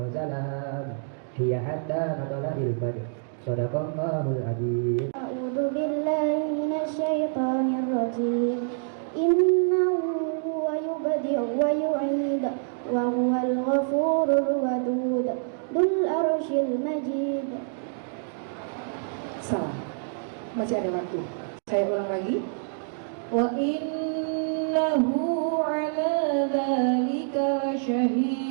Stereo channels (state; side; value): silent; left; digital silence